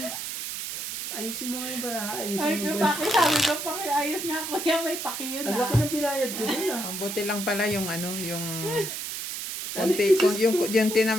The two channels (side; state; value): right; noise; hiss, 6 dB below the sound